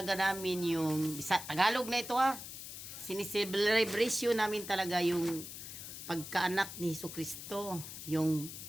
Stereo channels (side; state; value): left; noise; hiss, 10 dB below the sound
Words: namin yung Tagalog na ito ha. Sinicelebration namin talaga yung pagkaanak ni Jesucristo, yung